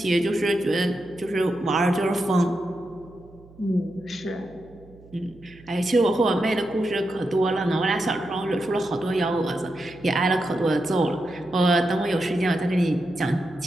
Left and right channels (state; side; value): noise; right; hum, 24 dB below the sound